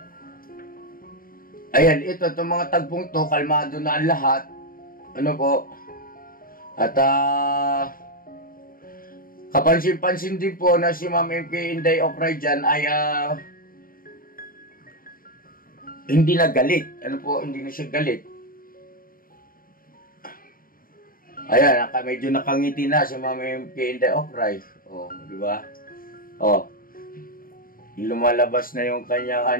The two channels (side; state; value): right; late; 0.41 ms